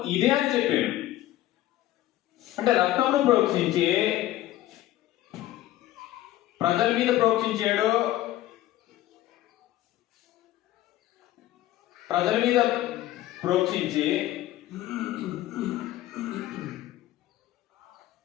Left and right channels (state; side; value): quieter; right; 14.7 dB